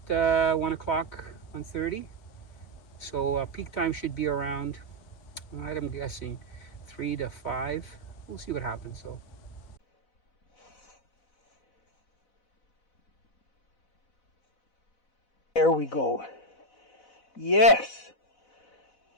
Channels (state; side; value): late; right; 4.0 ms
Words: 1 o'clock, 1:30. So peak time should be around, I'm guessing, 3 to 5. We'll see what happens. So. There we go. Yes!